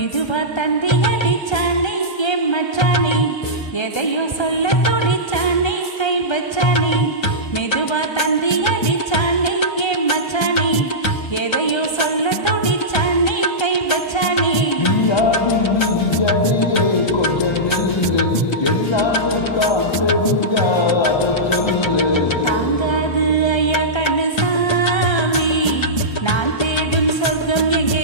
தந்தி அடிச்சானே என் மச்சானே, எதையோ சொல்ல துடிச்சானே கை வச்சானே. மெதுவா தந்தி அடிச்சானே என் மச்சானே, எதையோ சொல்ல துடிச்சானே கை வச்சானே. அடியே கொஞ்சம் நில்லு, எல்லாமே தான் தெரிஞ்சாத சொல்லு. தாங்காது ஐயா கண்ணு சாமி, நான் தேடும் சொர்க்கம் எங்கே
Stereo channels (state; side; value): late; right; 1.3 ms